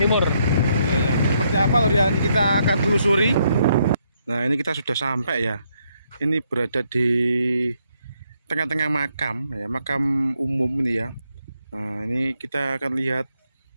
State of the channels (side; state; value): both; inverted; correlation -0.75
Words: Iya. Seperti apa loh ya? Kita akan telusuri. Nah, ini kita sudah sampai ya. Ini berada di tengah-tengah makam ya, makam umum ini ya. Nah, ini kita akan lihat